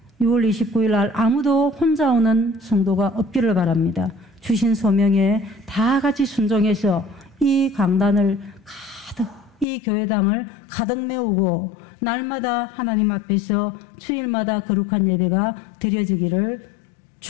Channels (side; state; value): right; drops out; at 9.7 s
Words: 6월 29일 날 아무도 혼자 오는 성도가 없기를 바랍니다. 주신 소명에 다 같이 순종해서 이 강단을 가득, 이 교회당을 가득 메우고 날마다 하나님 앞에서 주일마다 거룩한 예배가 드려지기를